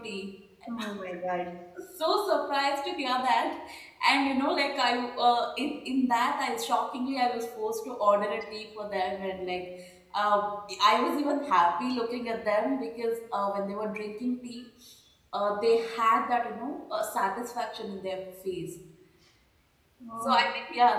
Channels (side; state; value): both; identical; correlation 1.00